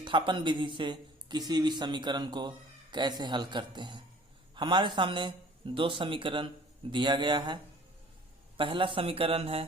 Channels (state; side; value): normal; both; correlation 0.50